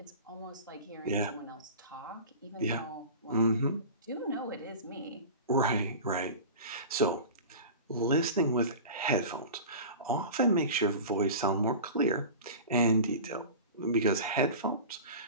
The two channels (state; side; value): inverted; both; correlation -0.34